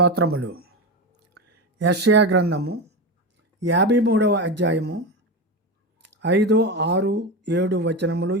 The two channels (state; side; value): normal; both; correlation 0.19